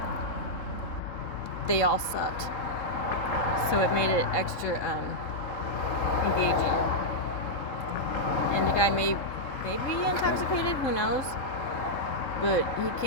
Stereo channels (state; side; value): late; right; 3.7 ms